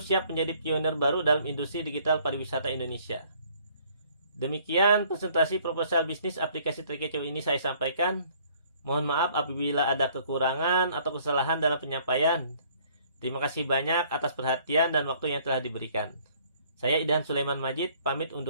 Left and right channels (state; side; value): inverted; both; correlation -0.60